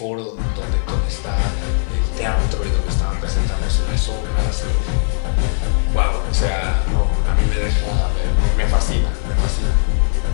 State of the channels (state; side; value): silent; right; 56 dB below the other